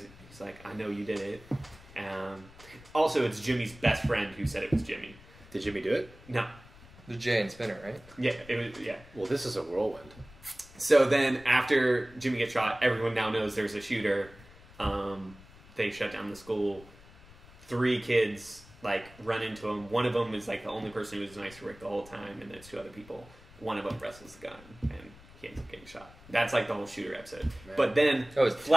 he's like, "I know you did it." Also, it's Jimmy's best friend who said it was Jimmy. Did Jimmy do it? No. The Jay and Spinner, right? Yeah, it was. Yeah. Well, this is a whirlwind. So then, after Jimmy gets shot, everyone now knows there's a shooter. They shut down the school. 3 kids like run into him. One of them is like the only person who was nice to Rick the whole time, and there's 2 other people. One of them wrestles the gun, and he ends up getting shot. That's like the whole shooter episode. Man. But then,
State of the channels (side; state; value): left; noise; rumble, 22 dB below the sound